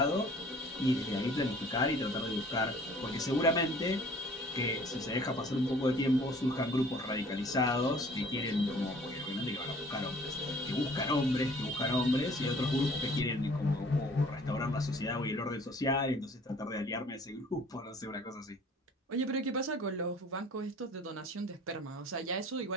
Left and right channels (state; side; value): normal; both; correlation 0.52